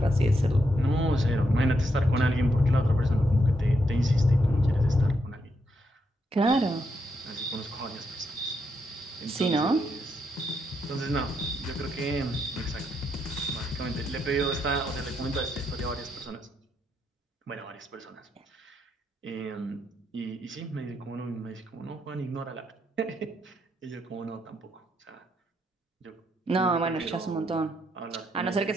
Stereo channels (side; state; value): both; normal; correlation 0.79